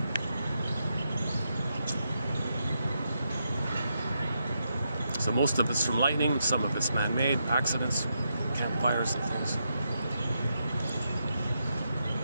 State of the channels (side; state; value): both; inverted; correlation -0.83